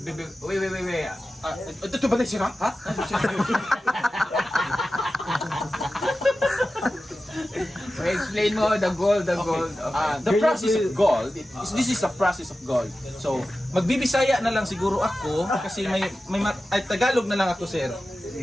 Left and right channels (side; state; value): both; normal; correlation 0.94